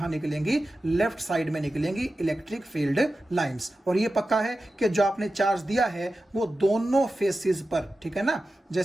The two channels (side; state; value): both; normal; correlation 0.93